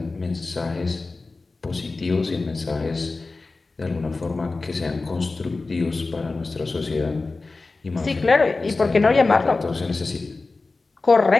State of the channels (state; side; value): quieter; right; 3.6 dB